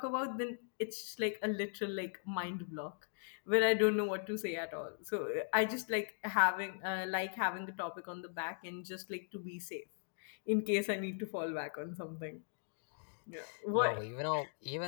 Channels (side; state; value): right; silent; digital silence